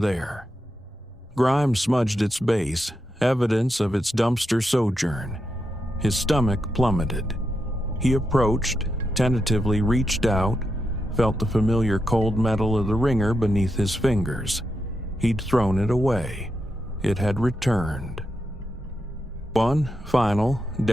Grime smudged its base, evidence of its dumpster sojourn. His stomach plummeted. He approached, tentatively reached out, felt the familiar cold metal of the ringer beneath his fingers. He'd thrown it away. It had returned. One final,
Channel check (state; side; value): normal; both; correlation 0.86